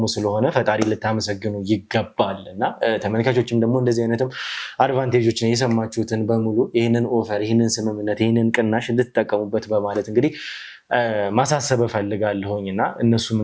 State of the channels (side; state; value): both; identical; correlation 1.00